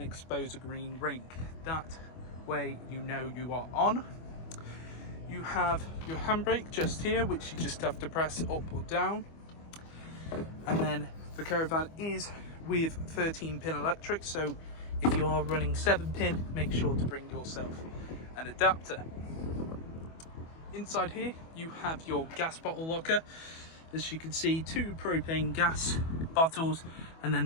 expose a green ring. That way you know you are on. You have your handbrake just here, which you just have to press up or down. And then the caravan is with 13-pin electric, so if you are running 7-pin, make sure to bring yourself an adapter. Inside here, you have your gas bottle locker. As you can see, 2 propane gas bottles, and then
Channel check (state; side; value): late; right; 25 ms